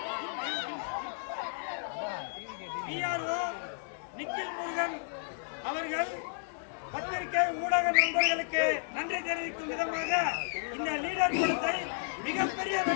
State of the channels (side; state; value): right; silent; digital silence